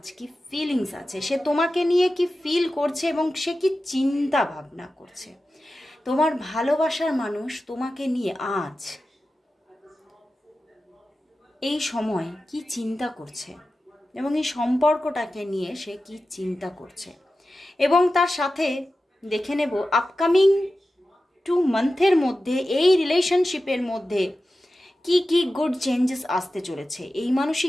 কি ফিলিংস আছে, সে তোমাকে নিয়ে কি ফিল করছে এবং সে কি চিন্তা ভাবনা করছে। তোমার ভালোবাসার মানুষ তোমাকে নিয়ে আজ এই সময় কি চিন্তা করছে এবং এই সম্পর্কটাকে নিয়ে সে কি চিন্তা করছে। এবং তার সাথে দেখে নেব আপকামিং 2 মান্থের মধ্যে এই রিলেশনশিপের মধ্যে কি কি গুড চেঞ্জেস আসতে চলেছে। এই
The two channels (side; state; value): both; normal; correlation 0.93